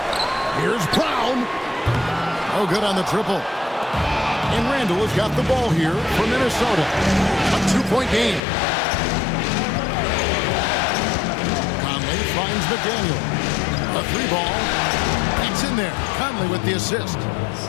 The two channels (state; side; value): drops out; right; at 8.4 s